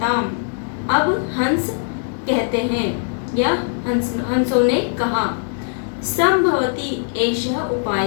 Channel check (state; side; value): silent; right; digital silence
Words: अब हंस कहते हैं या हंसों ने कहा। संभवती एषः उपाय,